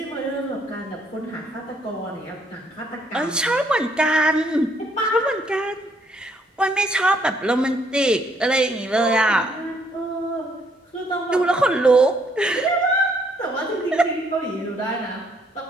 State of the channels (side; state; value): both; normal; correlation 0.68